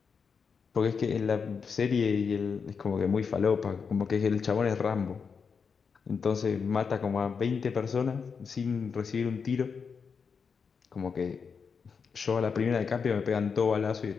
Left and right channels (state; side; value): quieter; right; 5.8 dB